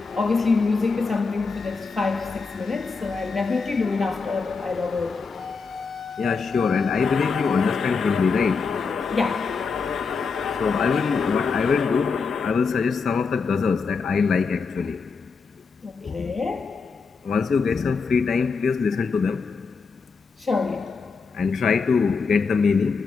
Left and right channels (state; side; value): quieter; right; 4.9 dB